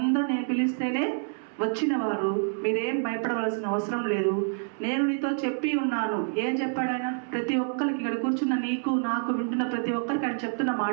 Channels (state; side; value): silent; left; 60 dB below the other